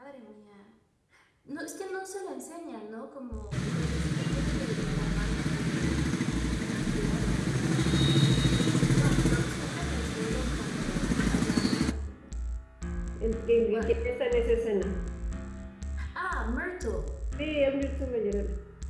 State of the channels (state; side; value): identical; both; correlation 1.00